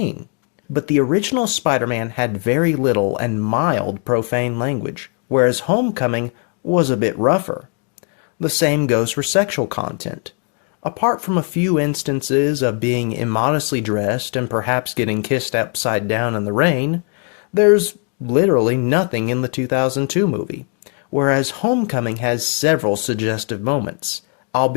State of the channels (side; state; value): right; quieter; 38.9 dB